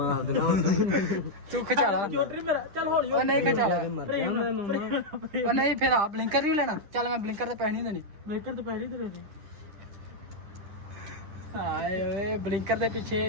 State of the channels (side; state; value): left; late; 10 ms